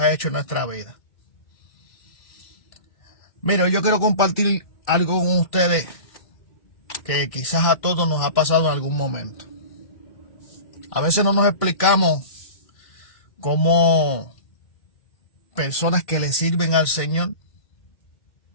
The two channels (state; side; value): late; right; 2.1 ms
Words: ha hecho en nuestra vida. Mira, yo quiero compartir algo con ustedes que quizás a todos nos ha pasado en algún momento. A veces no nos explicamos cómo personas que le sirven al Señor